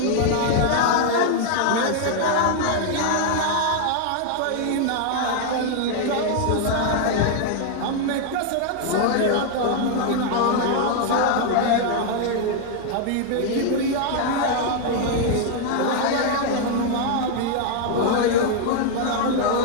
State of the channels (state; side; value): different; both; correlation 0.00